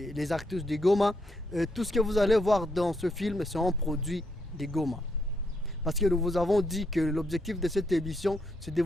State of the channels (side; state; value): both; normal; correlation 0.77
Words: les actrices de Goma. Tout ce que vous allez voir dans ce film, c'est un produit de Goma. Parce que nous vous avons dit que l'objectif de cette émission, c'est de